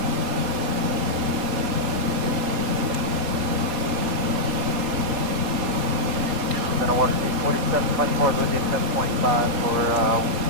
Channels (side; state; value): left; late; 4.3 ms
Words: Then I want to see 4724 with you 10.5 for